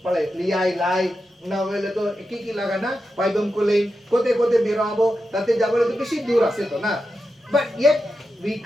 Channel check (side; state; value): both; normal; correlation 0.89